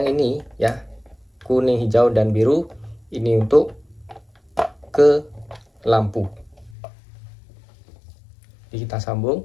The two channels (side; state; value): right; drops out; at 6.8 s